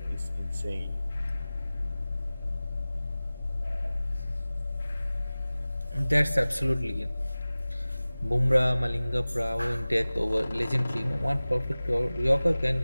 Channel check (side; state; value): both; inverted; correlation -0.98